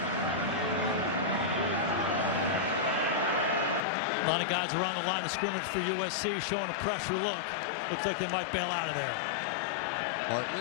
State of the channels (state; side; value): drops out; right; at 3.8 s